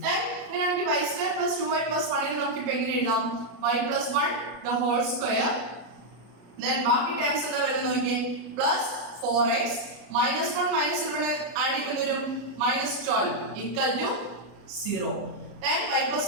അങ്ങനെയാണെങ്കിൽ y square plus 2y plus 1നെ നമുക്ക് ഇപ്പൊ എങ്ങനെ എഴുതാം? y plus 1 the whole square, ബാക്കി ടേംസ് എന്താ വരുന്നത് നോക്കിയേ. Plus 4x minus 1 minus 11 add ചെയ്യുമ്പോൾ വരും minus 12 equal to 0. Then y plus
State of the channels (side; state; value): left; late; 33 ms